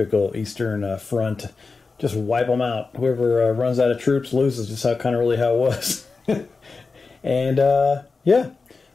Eastern Front. Just wipe them out. Whoever runs out of troops loses, just how it was. And yeah,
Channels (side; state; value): right; quieter; 4.3 dB